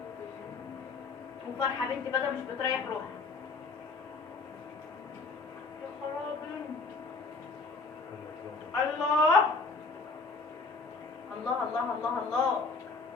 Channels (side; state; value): right; quieter; 4.0 dB